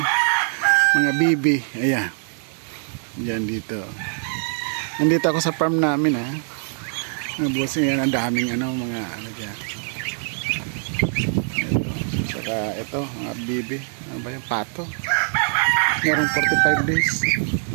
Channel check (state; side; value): silent; left; 57 dB below the other